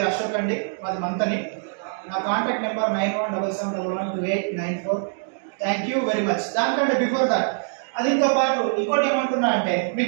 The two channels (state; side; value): silent; left; digital silence